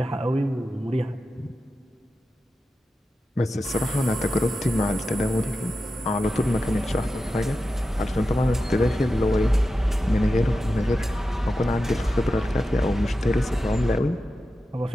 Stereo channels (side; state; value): both; normal; correlation 0.91